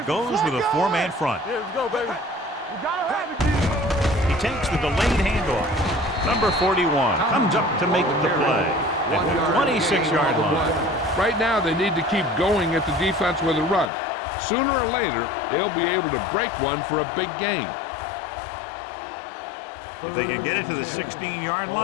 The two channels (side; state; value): right; drops out; at 13.9 s